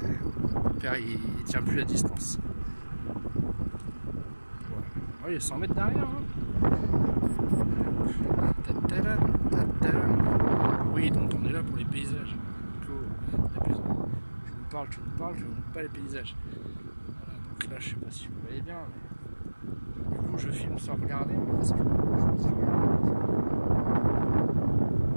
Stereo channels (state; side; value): inverted; both; correlation -1.00